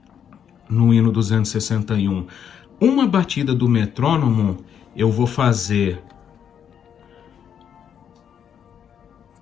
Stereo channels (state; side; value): quieter; right; 8.4 dB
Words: hino 261? Uma batida do metrônomo, eu vou fazer